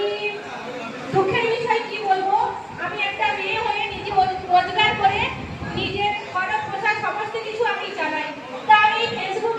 দুঃখের বিষয় কি বলবো, আমি একটা মেয়ে হয়ে নিজে রোজগার করে নিজের খরচ পোশাক সমস্ত কিছু আমি চালাই। তা আমি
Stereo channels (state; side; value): identical; both; correlation 1.00